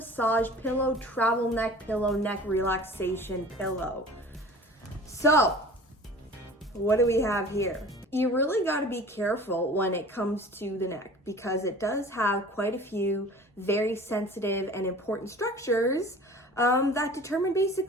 pillow, travel neck pillow, neck relaxation pillow. So what do we have here? You really got to be careful when it comes to the neck because it does have quite a few very sensitive and important structures that determine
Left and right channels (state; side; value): normal; both; correlation 0.43